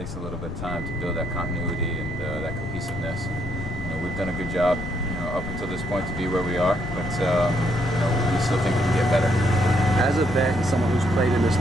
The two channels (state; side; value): noise; left; rumble, 9 dB below the sound